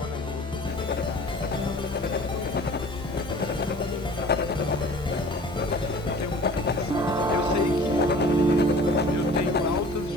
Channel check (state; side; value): normal; both; correlation 0.45